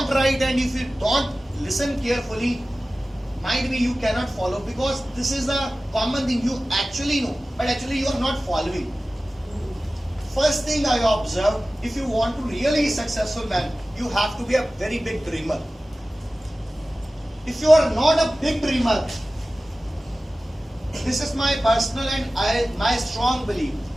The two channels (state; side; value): normal; both; correlation 0.96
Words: write and if you don't listen carefully, might be you cannot follow, because this is a common thing you actually know, but actually you are not following. First thing I observed, if you want to really successful man, you have to be a very big dreamer. If you are not a big dreamer, this is my personal and my strong belief,